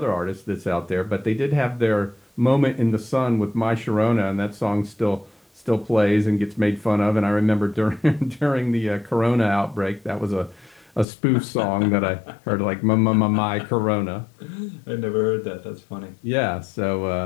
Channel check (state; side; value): drops out; right; at 11.1 s